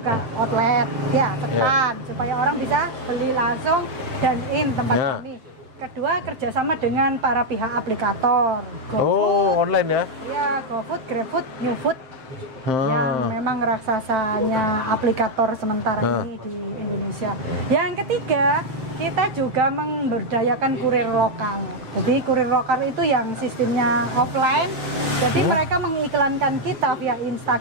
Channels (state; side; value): late; left; 7.7 ms